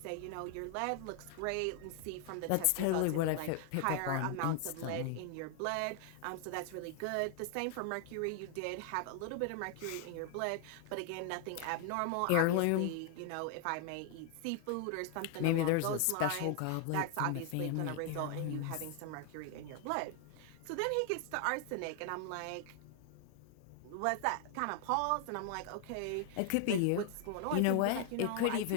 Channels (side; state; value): both; different; correlation 0.00